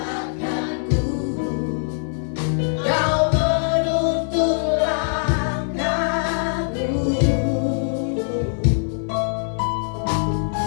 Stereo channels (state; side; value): silent; right; digital silence